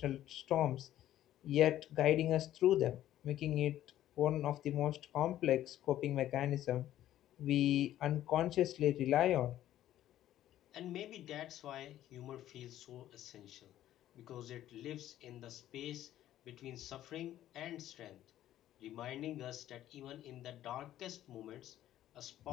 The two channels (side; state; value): right; quieter; 12.8 dB